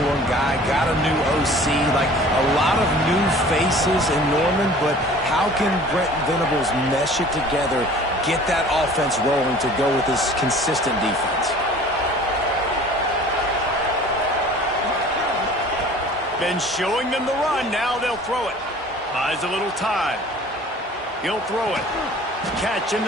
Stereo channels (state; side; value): normal; both; correlation 0.47